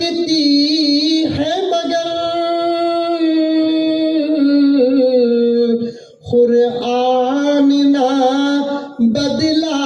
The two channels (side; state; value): both; identical; correlation 1.00